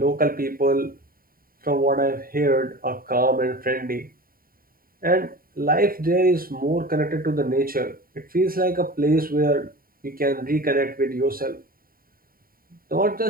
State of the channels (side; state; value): left; late; 0.42 ms